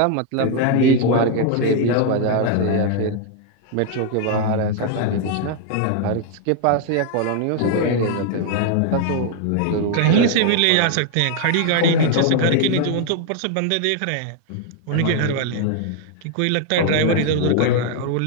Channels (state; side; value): different; both; correlation 0.01